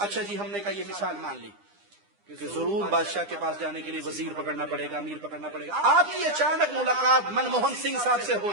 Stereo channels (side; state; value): left; late; 9.9 ms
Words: جی ہم نے کہا یہ مثال مان لی کہ ضرور بادشاہ کے پاس جانے کے لیے وزیر پکڑنا پڑے گا، امیر پکڑنا پڑے گا. آپ کی اچانک ملاقات منموہن سنگھ صاحب سے ہو